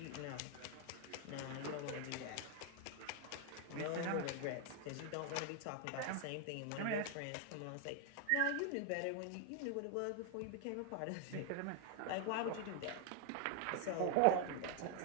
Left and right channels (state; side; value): different; both; correlation 0.00